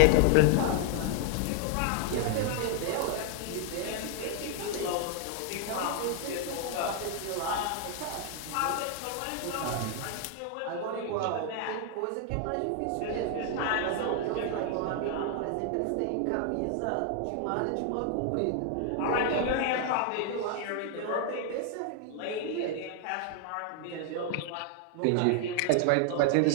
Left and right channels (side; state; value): both; different; correlation 0.00